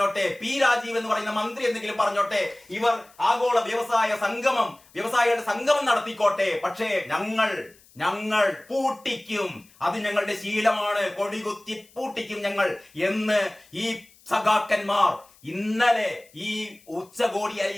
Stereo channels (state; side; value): noise; left; hiss, 28 dB below the sound